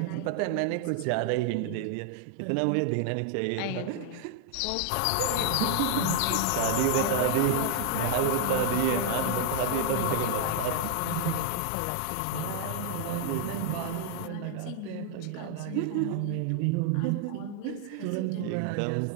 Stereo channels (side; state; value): both; different; correlation 0.00